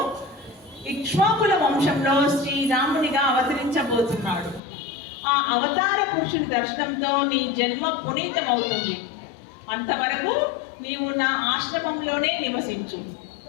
ఇక్ష్వాకుల వంశంలో శ్రీరామునిగా అవతరించబోతున్నాడు. ఆ అవతార పురుషుని దర్శనంతో నీ జన్మ పునీతమవుతుంది. అంతవరకు నీవు నా ఆశ్రమంలోనే నివసించు.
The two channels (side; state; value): right; drops out; at 4.6 s